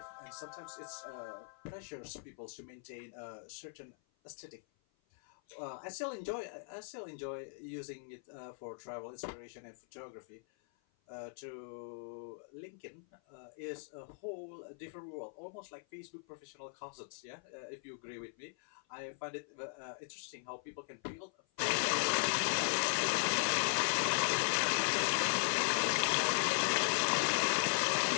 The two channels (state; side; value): silent; right; 52 dB below the other